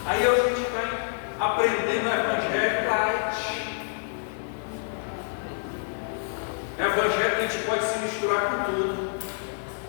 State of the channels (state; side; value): silent; right; 60 dB below the other